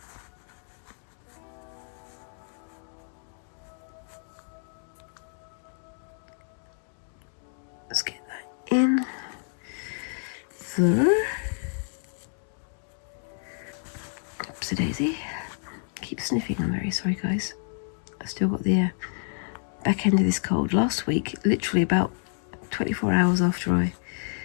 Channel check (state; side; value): silent; right; 59 dB below the other